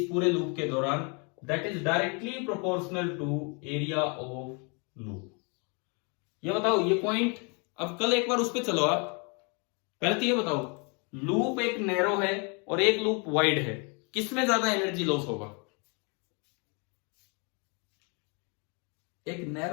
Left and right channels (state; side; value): quieter; right; 34.0 dB